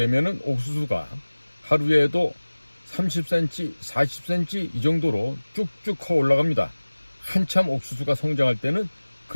옥수수가 하루에도 30cm, 40cm 이 정도로 쭉쭉 커 올라갑니다. 한참 옥수수가 성장할 때는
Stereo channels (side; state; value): both; inverted; correlation -1.00